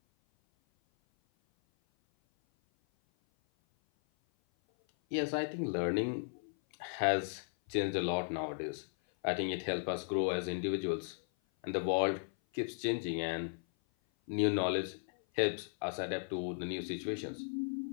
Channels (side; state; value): right; silent; 54 dB below the other